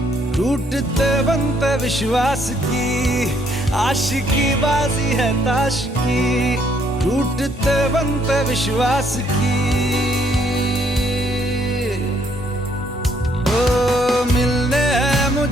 टूटते बनते विश्वास की। आशिकी बाजी है ताश की, टूटते बनते विश्वास की। ओ मिलने है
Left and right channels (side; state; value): both; normal; correlation 0.68